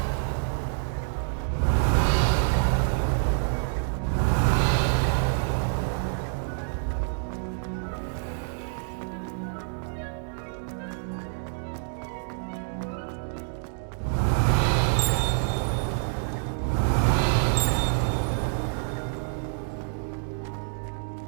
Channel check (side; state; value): left; silent; digital silence